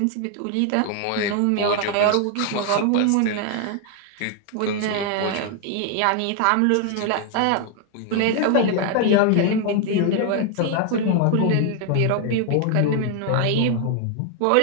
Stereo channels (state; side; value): different; both; correlation 0.00